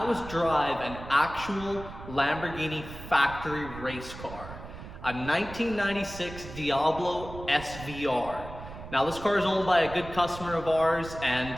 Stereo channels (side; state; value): right; noise; rumble, 13 dB below the sound